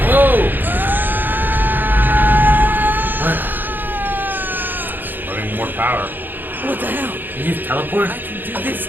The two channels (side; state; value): left; late; 0.090 ms